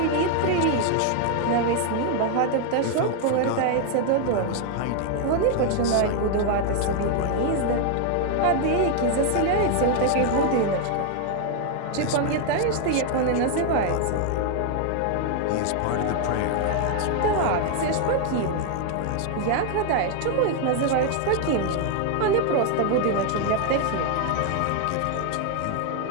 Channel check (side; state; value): both; different; correlation 0.00